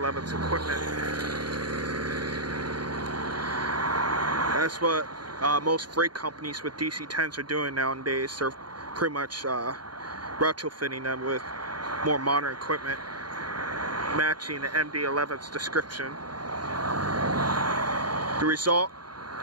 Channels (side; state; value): left; late; 0.71 ms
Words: equipment. That's what most freight companies with DC-10s are doing nowadays. They're pretty much retrofitting them with more modern equipment, matching the MD-11's description. The result,